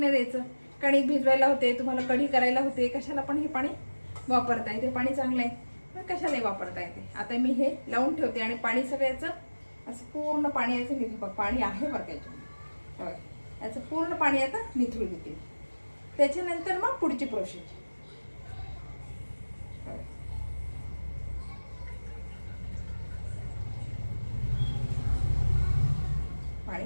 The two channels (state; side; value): inverted; both; correlation -1.00